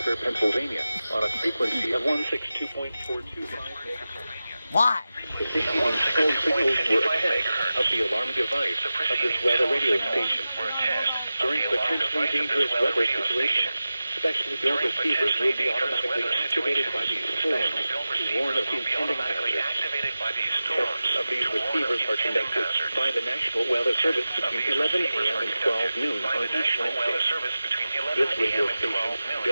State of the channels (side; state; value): both; inverted; correlation -0.94